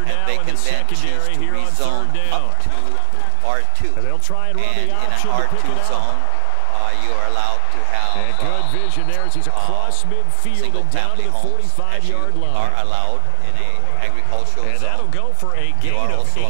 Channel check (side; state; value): both; different; correlation 0.00